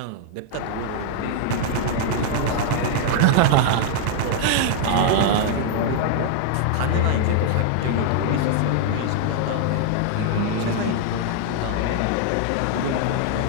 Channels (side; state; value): both; different; correlation 0.00